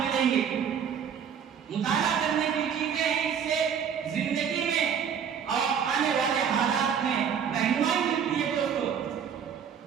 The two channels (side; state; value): left; quieter; 7.7 dB